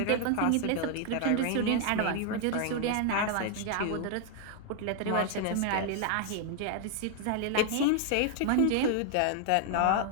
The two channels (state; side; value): different; both; correlation 0.00